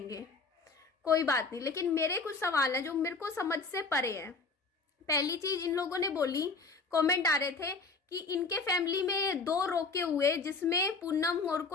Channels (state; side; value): quieter; right; 4.1 dB